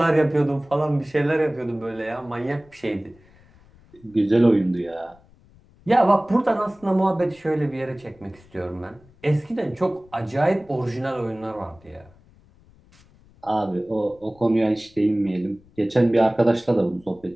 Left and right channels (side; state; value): left; noise; rumble, 28 dB below the sound